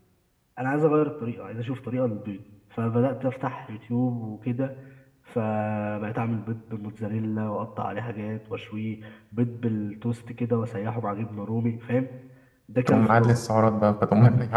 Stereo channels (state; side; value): identical; both; correlation 1.00